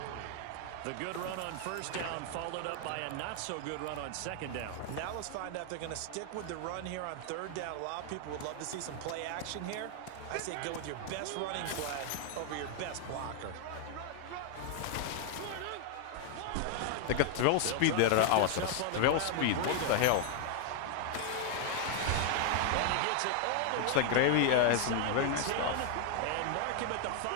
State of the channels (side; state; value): both; different; correlation 0.00